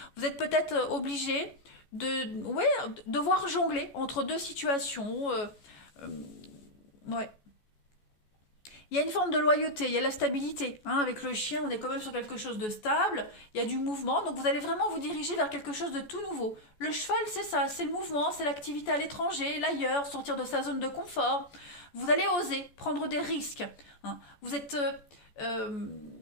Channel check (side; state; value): right; late; 14 ms